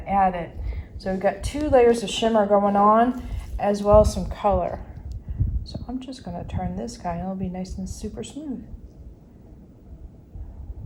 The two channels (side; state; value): both; identical; correlation 1.00